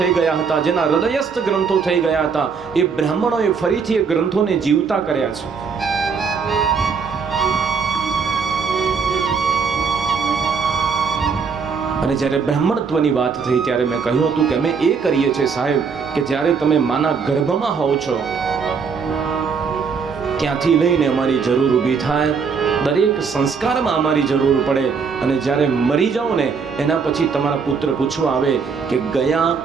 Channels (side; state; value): left; quieter; 5.6 dB